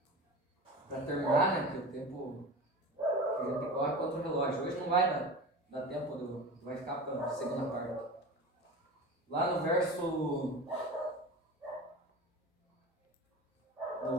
Para terminar, né, que o tempo que a gente corre contra o relógio. Hoje não vai dar tempo, vai ficar para a segunda parte. Lá no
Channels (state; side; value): normal; both; correlation 0.32